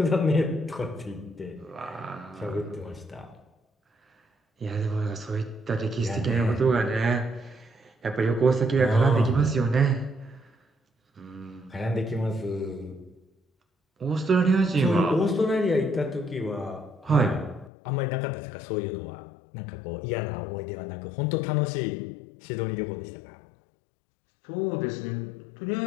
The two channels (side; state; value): right; drops out; at 17.7 s